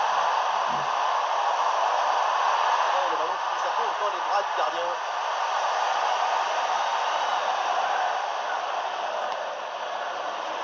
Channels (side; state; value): both; identical; correlation 1.00